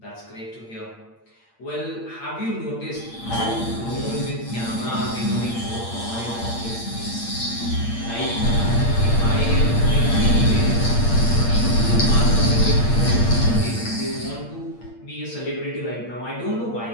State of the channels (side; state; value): right; late; 8.7 ms